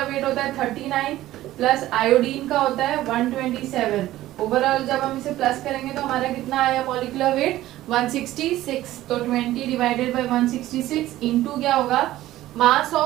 वेट होता है 39 प्लस आयोडीन का होता है 127। ओवरऑल जब हम इसे प्लस करेंगे तो हमारा कितना आया मॉलिक्यूलर वेट 166। तो 20 डिवाइडेड बाय 166 इनटू क्या होगा, मास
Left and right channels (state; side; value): quieter; left; 15.1 dB